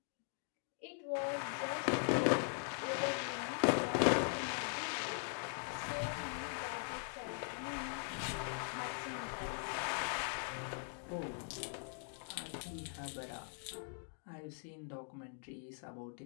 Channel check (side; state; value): right; silent; 50 dB below the other